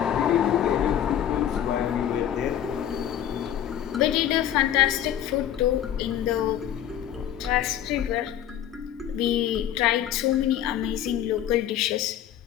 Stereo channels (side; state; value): right; quieter; 10.7 dB